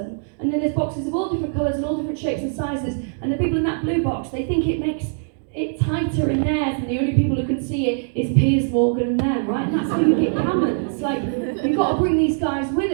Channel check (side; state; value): left; silent; digital silence